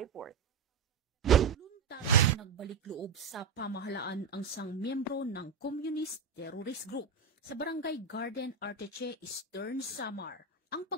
Voluntary nagbalik loob sa pamahalaan ang isang miyembro ng Communist Terrorist Group sa Barangay Garden, Arteche, Eastern Samar. Ang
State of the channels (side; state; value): left; quieter; 5.3 dB